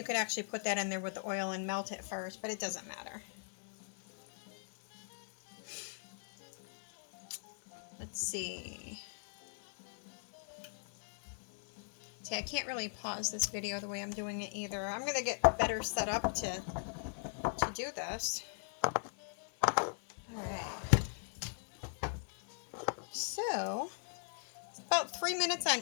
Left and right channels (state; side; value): silent; right; digital silence